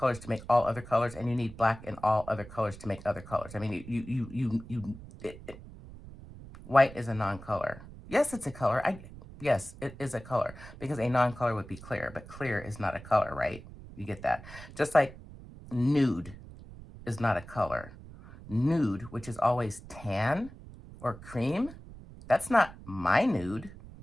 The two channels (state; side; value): noise; right; rumble, 16 dB below the sound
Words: to make all other colors, and you need black in all other colors to make other colors. I mean, white is a non-color. Yes, it's a color. Yes, it is a color, because a non-color would be clear, but clear is not a color, right? You get that? Just like nude is not a color. Nude, which is always tan or cream, that's not my nude.